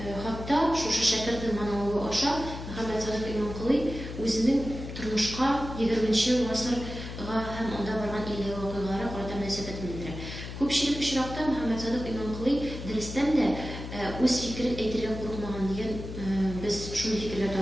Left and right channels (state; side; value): noise; left; hum, 9 dB below the sound